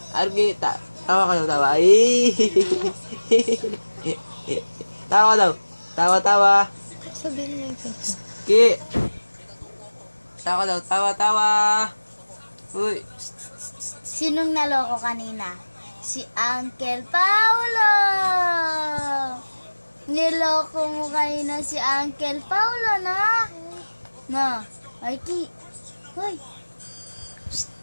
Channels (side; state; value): both; inverted; correlation -1.00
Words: Argi, tawa ka daw, tawa. Ay. Tawa daw. Tawa, tawa. Sabihin mo yung face. Ki. Tawa daw, tawa, tawa. Uy. Sinong naloko kanina? Si Uncle Paulo! Niloko mo kanina si Uncle Paulo, na? Na, Mikey. Hoy. Psst.